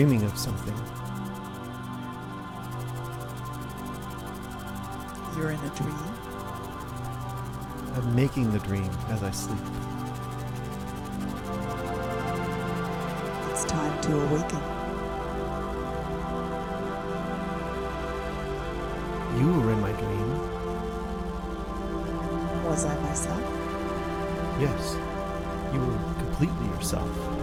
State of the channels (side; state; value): both; identical; correlation 1.00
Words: of something. You're in a dream? I'm making the dream as I sleep. It's time to awaken. You were in my dream. Was I myself? Yes, you were completely yourself.